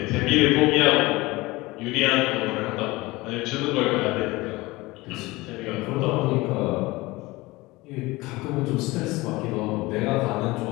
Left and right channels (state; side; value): quieter; right; 21.2 dB